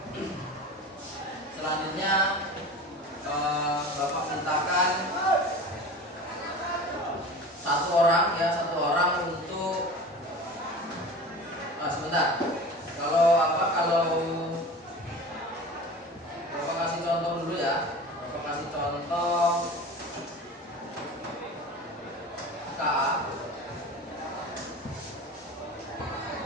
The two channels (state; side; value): normal; both; correlation 0.35